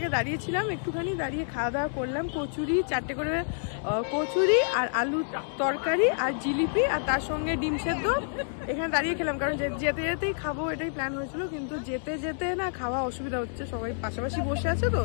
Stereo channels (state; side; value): silent; right; digital silence